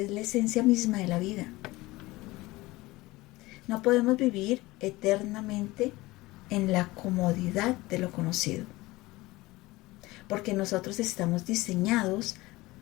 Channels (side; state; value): right; quieter; 20.1 dB